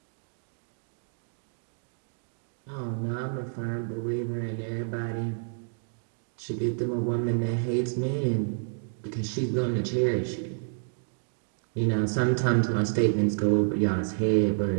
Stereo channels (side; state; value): left; silent; digital silence